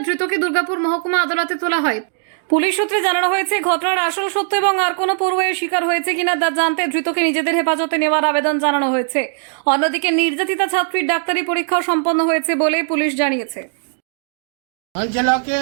ধৃতকে দুর্গাপুর মহকুমা আদালতে তোলা হয়। পুলিশ সূত্রে জানানো হয়েছে, ঘটনার আসল সত্য এবং আর কোনো পড়ুয়ার শিকার হয়েছে কিনা তা জানতে ধৃতকে নিজেদের হেফাজতে নেওয়ার আবেদন জানানো হয়েছে। অন্যদিকে নির্যাতিতা ছাত্রীর ডাক্তারি পরীক্ষাও সম্পন্ন হয়েছে বলে পুলিশ জানিয়েছে। অঞ্চলকে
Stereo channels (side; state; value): left; silent; digital silence